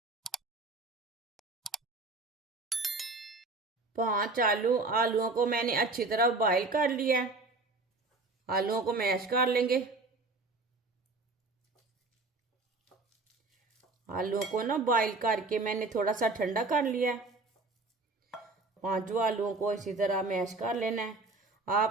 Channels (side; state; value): left; quieter; 3.5 dB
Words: 5 आलूओं को मैंने अच्छी तरह बॉईल कर लिया है। आलूओं को मैश कर लेंगे। आलूओं को ना बॉईल करके मैंने थोड़ा सा ठंडा कर लिया है। 5 आलूओं को इसी तरह मैश कर लेना है।